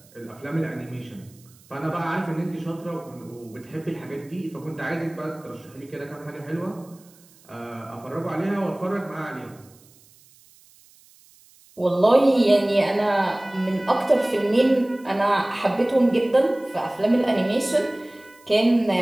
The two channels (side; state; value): right; noise; hiss, 28 dB below the sound